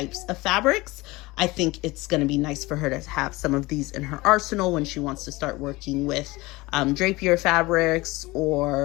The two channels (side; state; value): right; quieter; 21.5 dB